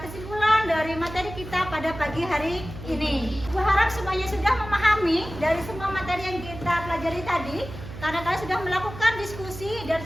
kesimpulan dari materi kita pada pagi hari ini. Gue harap semuanya sudah memahami dari semua materi yang kita pelajari tadi, karena kalian sudah melakukan diskusi dan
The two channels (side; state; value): right; noise; hum, 12 dB below the sound